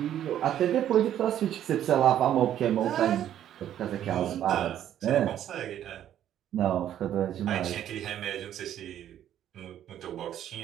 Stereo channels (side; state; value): left; quieter; 11.0 dB